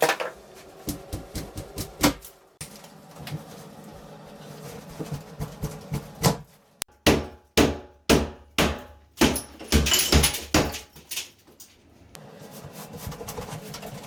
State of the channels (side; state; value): both; identical; correlation 1.00